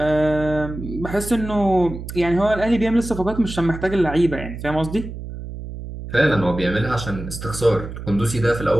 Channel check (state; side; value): noise; right; hum, 9 dB below the sound